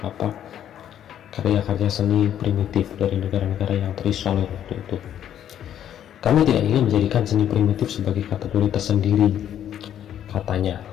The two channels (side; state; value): right; quieter; 10.4 dB